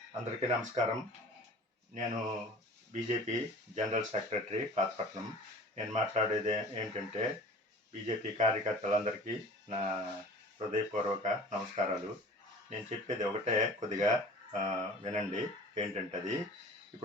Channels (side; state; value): both; normal; correlation 0.44